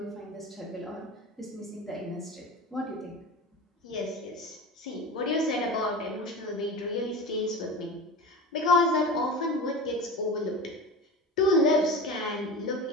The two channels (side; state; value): both; normal; correlation 0.30